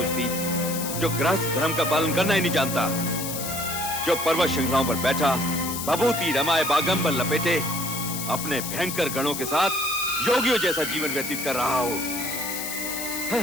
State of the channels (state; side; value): noise; left; hiss, 5 dB below the sound